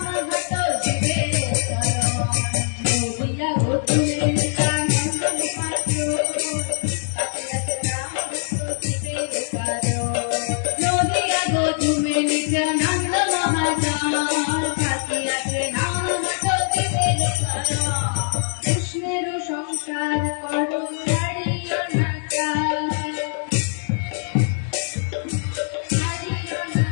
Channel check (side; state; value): right; silent; digital silence